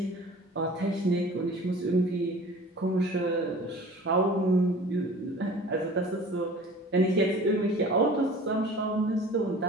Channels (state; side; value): normal; both; correlation 0.44